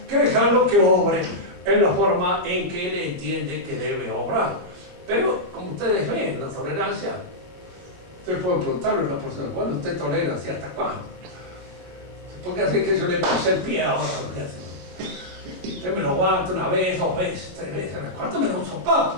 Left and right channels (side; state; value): left; late; 22 ms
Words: que dejarlo que obre en la forma en que él entiende que debe obrar. Pero, como ustedes ven, la tolerancia, ustedes pueden preguntarle a una persona, bueno, ¿usted tolera hasta cuándo? Porque así que yo le puse el pie ahora. Usted me lo aguanta una vez, 2 veces, 3 veces, a las cuartas me da un sopapo.